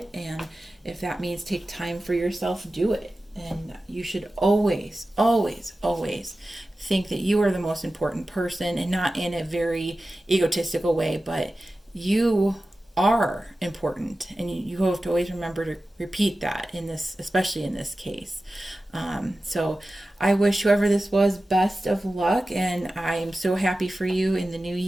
And if that means take time for yourself, do it. And you should always, always, always think that you are the most important person, and not in a very egotistical way, but you are important, and you have to always remember to repeat that in this, especially in this case. So I wish whoever this was best of luck, and I am so happy for you in the new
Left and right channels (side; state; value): both; normal; correlation 0.95